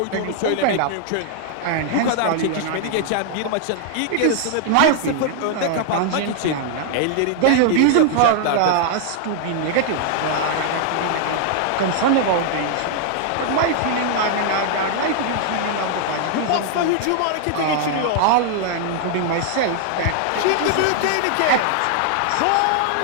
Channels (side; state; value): both; different; correlation 0.00